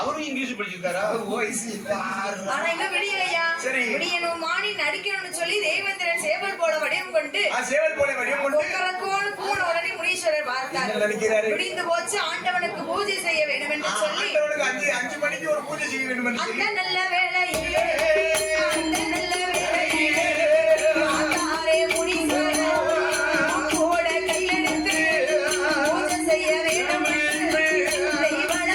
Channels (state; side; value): identical; both; correlation 1.00